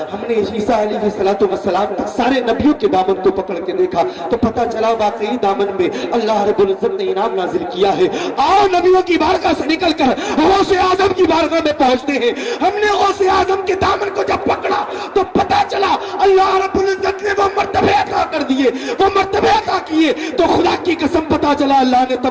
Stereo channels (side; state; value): both; identical; correlation 1.00